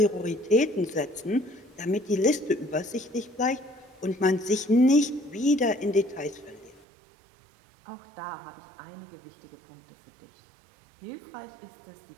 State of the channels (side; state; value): left; drops out; at 6.8 s